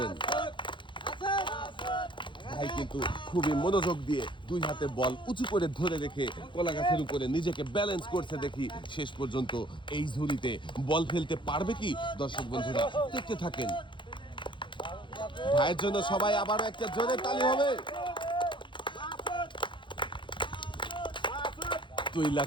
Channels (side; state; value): right; late; 0.23 ms